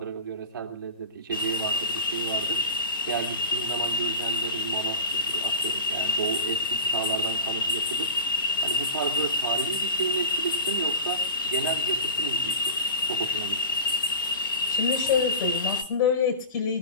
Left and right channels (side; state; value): both; inverted; correlation -0.31